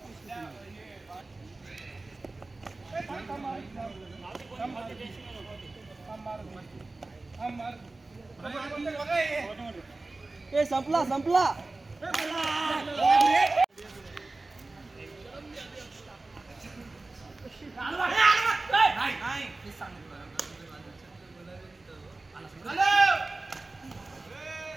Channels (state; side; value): quieter; left; 3.2 dB